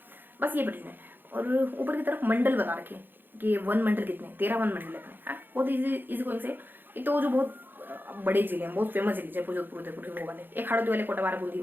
बस ये परियोजना है। और ऊपर की तरफ मंडल बता रखे कि वन मंडल कितने, 13 वन मंडल अपने, हाँ बहुत इजी गोइंग से। एक तो जो बहुत बड़े जिले हैं, बहुत फेमस जिले, जयपुर, जोधपुर, उदयपुर, वो वाले, एक हरदोई वाले, कोटाबारा, बूंदी,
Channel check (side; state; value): left; late; 0.095 ms